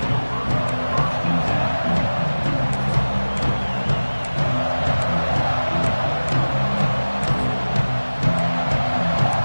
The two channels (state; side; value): inverted; both; correlation -1.00